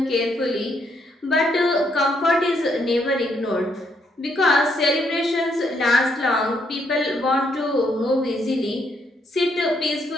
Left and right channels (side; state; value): both; normal; correlation 0.74